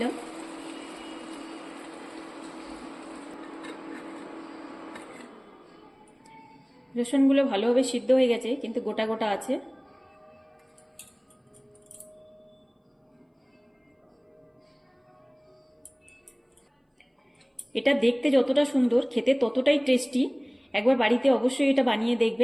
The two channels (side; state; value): both; identical; correlation 1.00